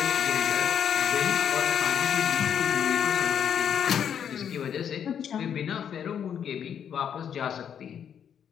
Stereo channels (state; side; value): quieter; right; 8.5 dB